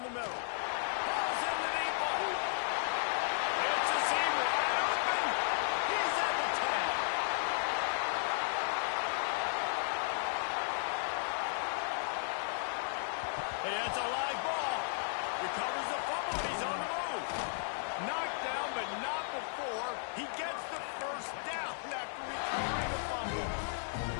the middle. Balls in the deep ball. It's a seam wide open. He's at the 10. And it's a live ball. Recovers the fumble. He's on the move. Knocked down, but not before. He gets the first down after recovering the fumble.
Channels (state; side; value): silent; right; 55 dB below the other